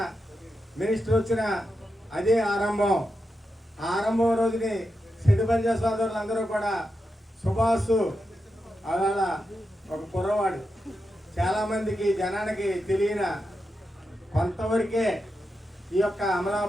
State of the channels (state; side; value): normal; both; correlation 0.87